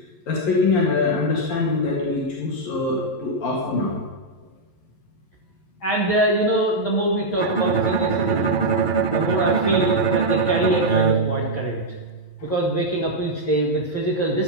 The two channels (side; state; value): right; late; 11 ms